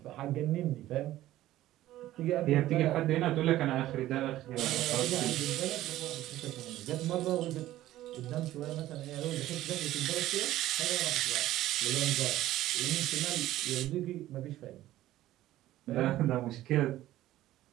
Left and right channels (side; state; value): left; quieter; 14.7 dB